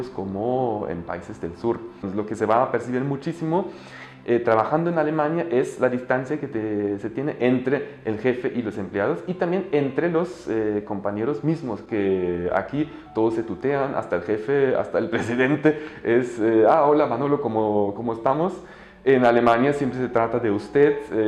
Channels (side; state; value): both; identical; correlation 1.00